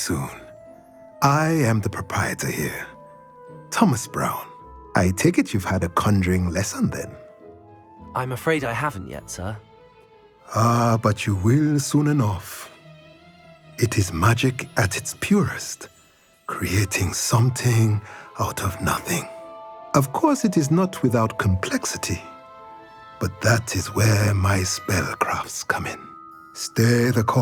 I am the proprietor here, Thomas Brown. I take it you've had a conjuring lesson then? I'm afraid I haven't yet, sir. Ah, but you will soon enough. It is magic at its purest, creating something out of nothing. Of course, it is not without complexity, but that is where my spellcrafts come in. Stay the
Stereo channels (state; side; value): identical; both; correlation 1.00